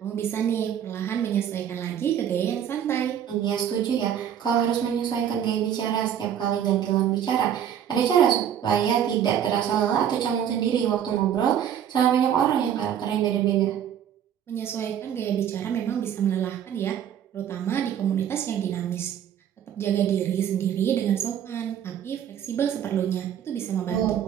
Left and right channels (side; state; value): left; quieter; 9.4 dB